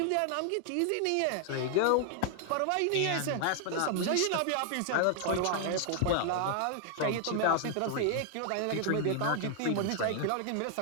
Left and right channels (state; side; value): different; both; correlation 0.00